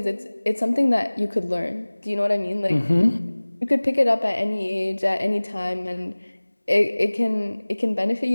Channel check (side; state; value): both; inverted; correlation -1.00